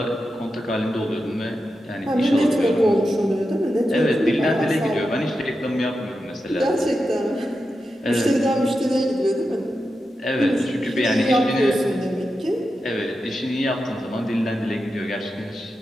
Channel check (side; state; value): both; normal; correlation 0.89